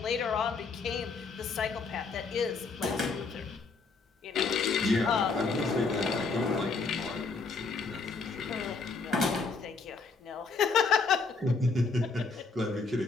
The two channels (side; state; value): right; quieter; 4.3 dB